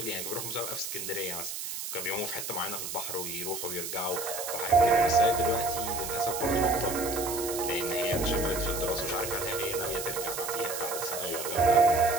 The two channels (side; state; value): right; noise; hiss, 6 dB below the sound